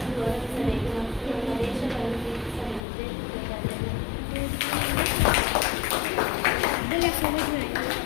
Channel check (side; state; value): right; drops out; at 2.8 s